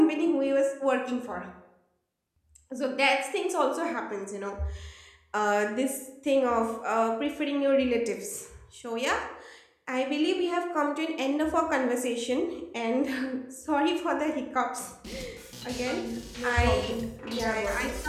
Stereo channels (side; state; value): both; identical; correlation 1.00